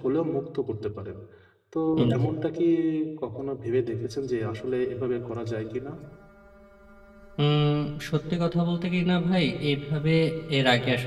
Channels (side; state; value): both; identical; correlation 1.00